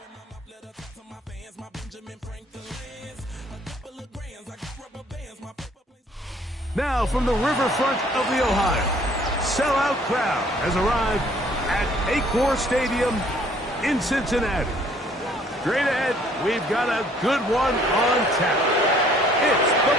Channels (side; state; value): both; normal; correlation 0.59